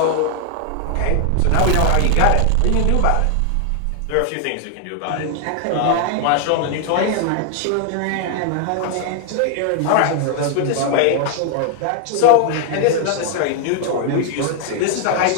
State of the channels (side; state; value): both; different; correlation 0.00